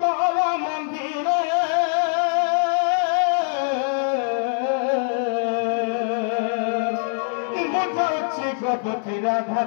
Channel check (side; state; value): right; silent; digital silence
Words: तारा मंदिर मुझे गपति